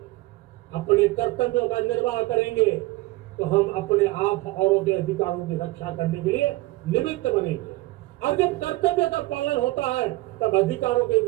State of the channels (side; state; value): left; quieter; 19.7 dB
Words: अपने कर्तव्यों का निर्वाह करेंगे तो हम अपने आप औरों के अधिकारों की रक्षा करने के लिए निमित्त बनेंगे। और जब कर्तव्य का पालन होता है तब अधिकारों की